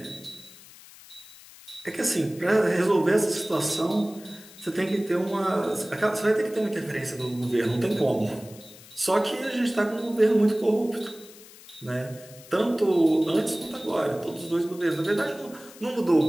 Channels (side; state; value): left; noise; hiss, 20 dB below the sound